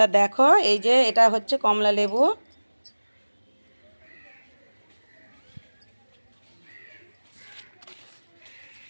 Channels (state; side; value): inverted; both; correlation -1.00